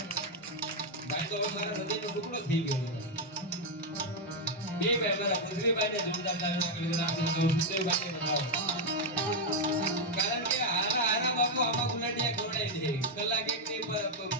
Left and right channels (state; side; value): normal; both; correlation 0.00